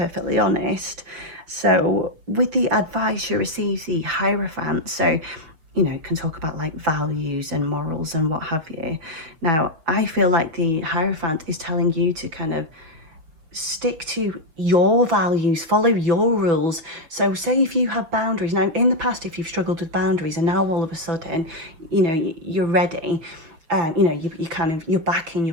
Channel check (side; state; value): left; late; 6.1 ms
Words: honest. So with the advice, you receive the Hierophant. So you know, can talk about like values and morals and what have you. Now, I feel like the Hierophant is telling you to kind of stick to your values, follow your rules. So say if you have boundaries, now in the past, if you've struggled with boundaries and now all of a sudden, you know, you're ready, you know, you kind of, you're back in